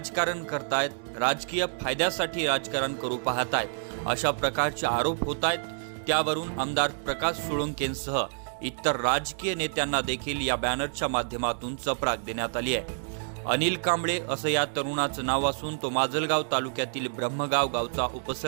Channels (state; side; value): silent; left; digital silence